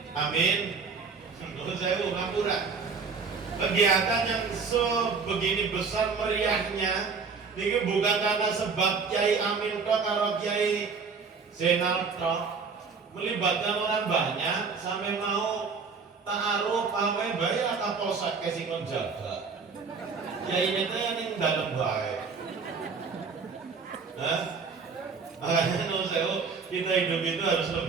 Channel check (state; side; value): quieter; left; 5.1 dB